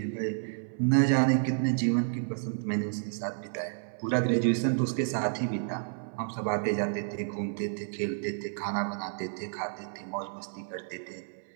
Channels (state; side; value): silent; left; 57 dB below the other